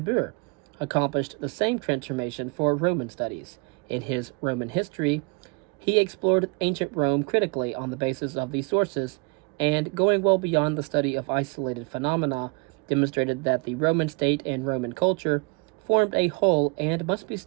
accomplished the same transformation for Roman studies. In his Roman history, he explored ancient Rome critically on the basis of these sources, and going well beyond the study of isolated phenomena, demonstrated that the Roman state and Roman culture formed a whole and must be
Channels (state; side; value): quieter; left; 31.8 dB